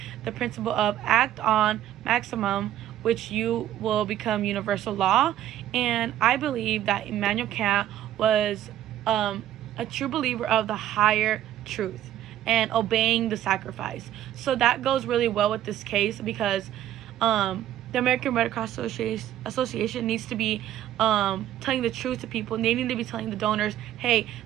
the principle of act on maximum, which you will become universal law. And I believe that Immanuel Kant was a true believer of the higher truth and obeying the sacrifice. So that goes really well with this case, because the American Red Cross Association needs to be telling the truth to people. They need to be telling the donors, hey,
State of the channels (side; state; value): left; quieter; 12.2 dB